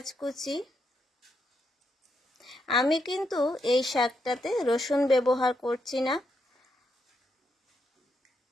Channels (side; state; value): both; normal; correlation 0.80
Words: কুচি। আমি কিন্তু এই শাকটাতে রসুন ব্যবহার করছি না,